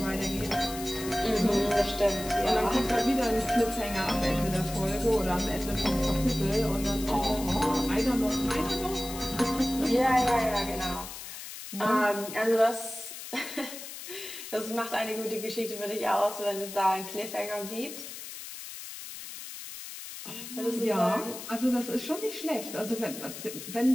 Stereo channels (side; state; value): left; noise; hiss, 11 dB below the sound